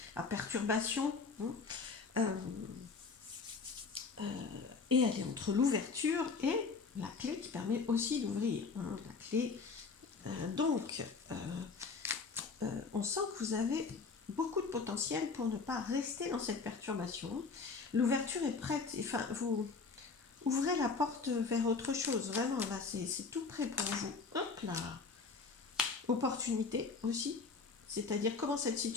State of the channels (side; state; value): right; quieter; 4.7 dB